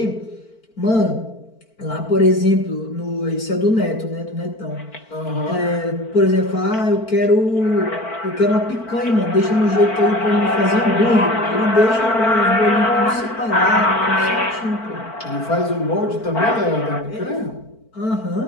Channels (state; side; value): late; right; 4.5 ms